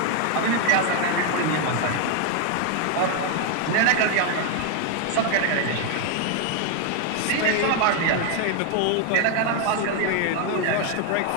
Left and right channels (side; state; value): both; different; correlation 0.01